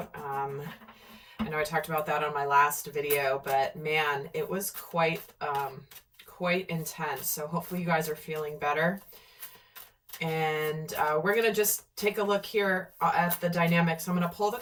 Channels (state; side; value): identical; both; correlation 1.00